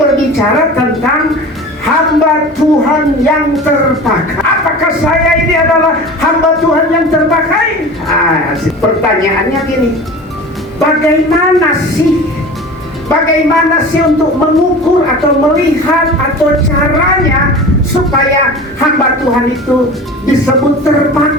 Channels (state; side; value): normal; both; correlation 0.36